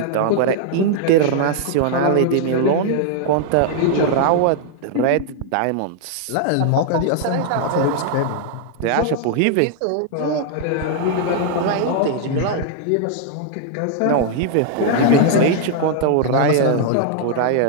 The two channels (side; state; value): both; different; correlation 0.00